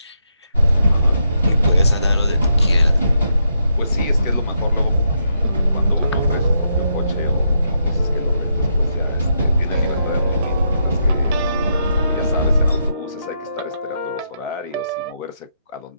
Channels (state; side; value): inverted; both; correlation -0.79